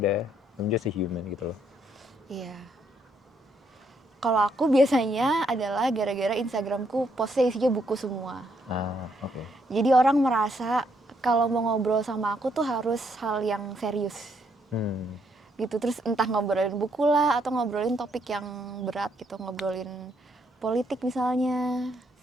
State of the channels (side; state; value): both; normal; correlation 0.73